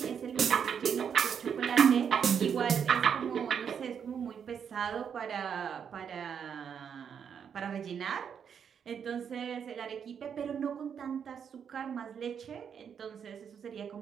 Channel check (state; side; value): quieter; left; 7.5 dB